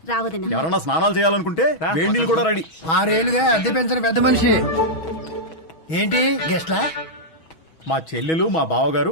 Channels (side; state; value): right; late; 6.2 ms